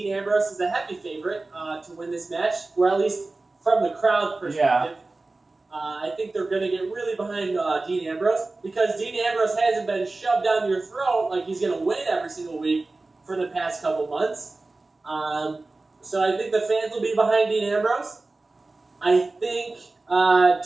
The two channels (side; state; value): left; quieter; 3.3 dB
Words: Ambrose as a heavy favorite to win this match, or at least from the crowd perspective. Yeah. I think they're going to get really behind Dean Ambrose, because Dean Ambrose hasn't been shoved down your throat like he's going to win every single week for the past couple months. So I think the fans will be behind Dean Ambrose. I think